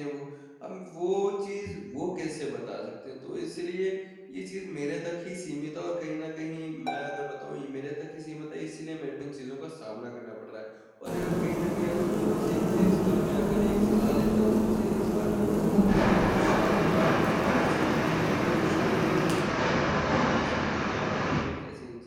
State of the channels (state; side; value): identical; both; correlation 1.00